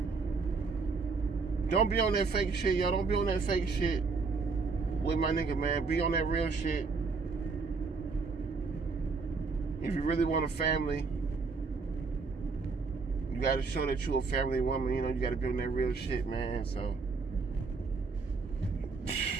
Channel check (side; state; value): left; quieter; 4.5 dB